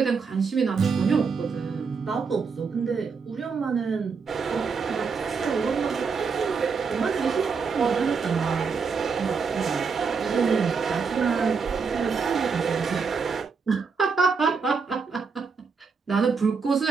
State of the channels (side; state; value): left; quieter; 5.3 dB